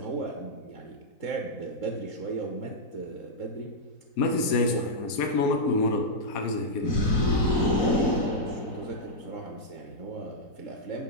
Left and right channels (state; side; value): late; right; 4.2 ms